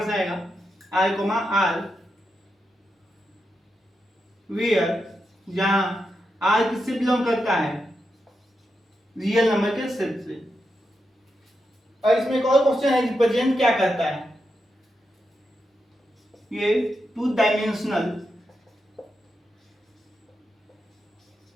से आएगा r, वेयर जहां आर किससे बिलोंग करता है, रियल नंबर के सेट से। और इसमें एक और क्वेश्चन है, रिप्रेजेंट क्या करता है, ये टू डायमेंशनल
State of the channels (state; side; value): normal; both; correlation 0.86